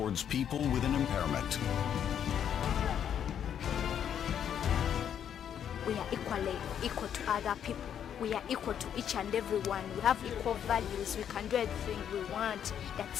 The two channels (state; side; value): quieter; right; 9.0 dB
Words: people with an impairment. We are equal to other people. We are equal to each and everyone. We have equal values. We can do everything we want.